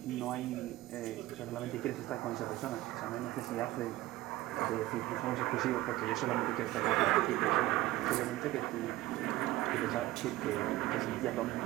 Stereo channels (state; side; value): quieter; left; 16.9 dB